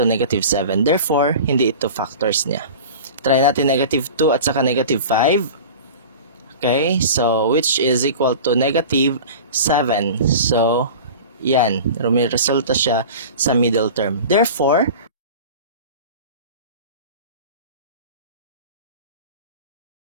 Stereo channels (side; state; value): both; inverted; correlation -0.36